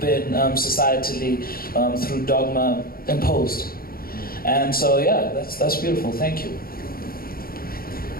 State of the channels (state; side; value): late; right; 0.43 ms